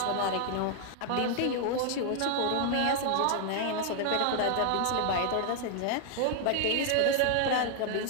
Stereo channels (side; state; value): both; different; correlation 0.00